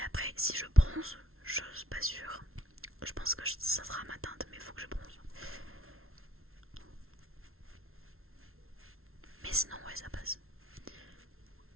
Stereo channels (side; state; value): left; late; 0.62 ms